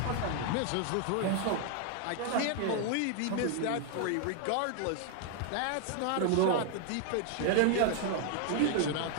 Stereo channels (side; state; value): both; different; correlation 0.00